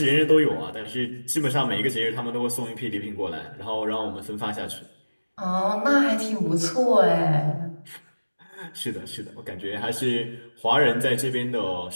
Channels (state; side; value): inverted; both; correlation -1.00